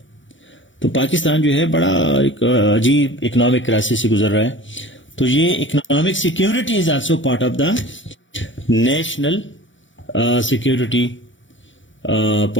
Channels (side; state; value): right; late; 0.55 ms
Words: تو پاکستان جو ہے بڑا ایک عجیب اکنامک کرائسس سے گزر رہا ہے. تو یہ economic security is also part of the national security